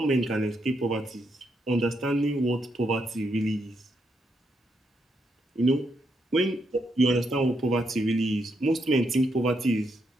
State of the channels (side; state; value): both; normal; correlation 0.79